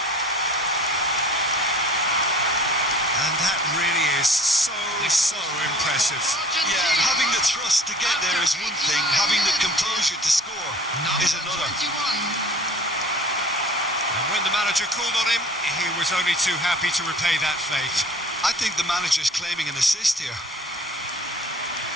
And that really is so impressive. Yeah, having the thrust to get there is one thing. Having the composure to score is another. And when the manager called on him, he was only too happy to repay that faith. I think the manager's claiming an assist here.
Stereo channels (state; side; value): normal; both; correlation 0.47